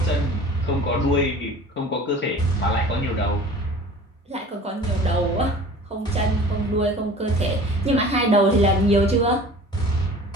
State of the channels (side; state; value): both; normal; correlation 0.43